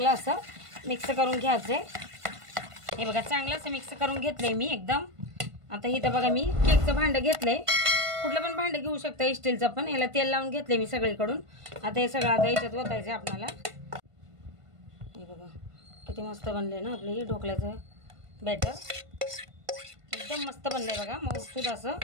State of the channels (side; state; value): left; late; 1.5 ms